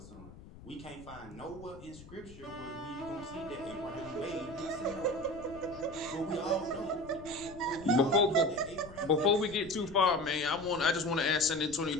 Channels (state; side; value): noise; left; rumble, 18 dB below the sound